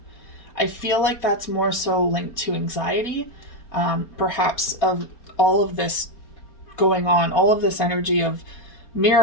I feel like that's more so linked to anxiety, perhaps of all of this going on, all of this energy of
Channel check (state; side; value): late; right; 4.3 ms